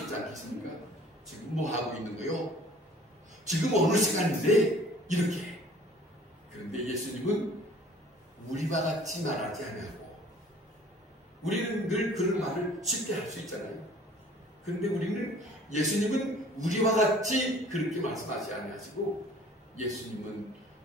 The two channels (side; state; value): both; normal; correlation 0.51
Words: 않겠습니까? 지금 뭐 하고 있는 거요? 지금 어느 시간인데? 이렇게. 그런데 예수님은 우리와 같이 말하지 않냐고. 우리는 늘 그런 말을 쉽게 할 수 있잖아요. 그런데 우리는 예수님은 우리와 같이 그렇게 말씀하지 않으시고 예수님은